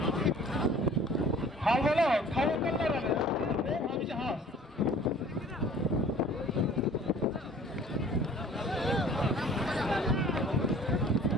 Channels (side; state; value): both; normal; correlation 0.49